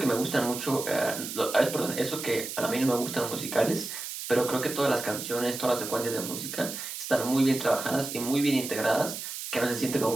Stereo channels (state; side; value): noise; right; hiss, 7 dB below the sound